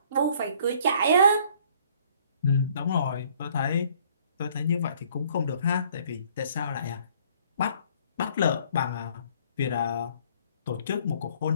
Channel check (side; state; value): both; inverted; correlation -0.59